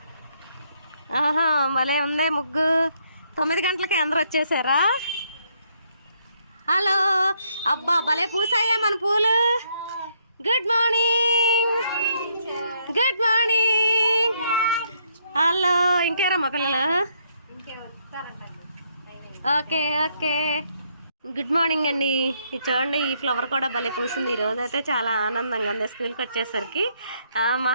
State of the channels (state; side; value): inverted; both; correlation -0.72